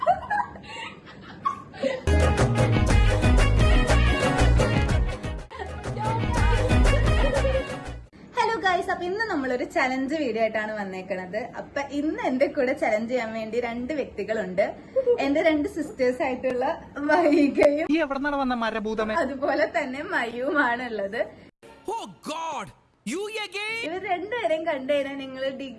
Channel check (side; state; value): both; identical; correlation 1.00